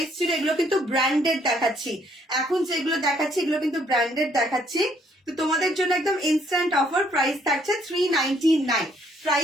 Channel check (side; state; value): both; normal; correlation 0.67